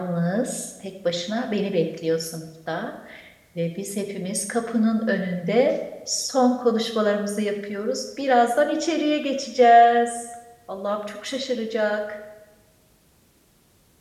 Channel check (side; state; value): both; identical; correlation 1.00